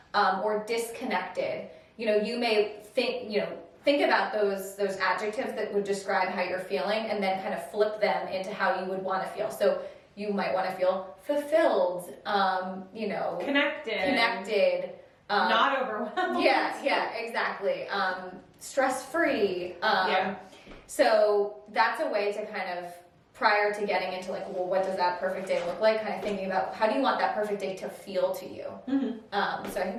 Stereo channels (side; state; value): both; identical; correlation 1.00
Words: or disconnected, you know, you may think about those adjectives that would describe how you're feeling, and then kind of flip them into how you would want to feel. So you might want to feel fulfilled, you know, connected, not overwhelmed. Yeah, exactly. Stress-free. So that's a way to kind of, prior to getting into like, well, what does that perfect day look like? Kind of thinking about how do you want that perfect day to feel to you. So I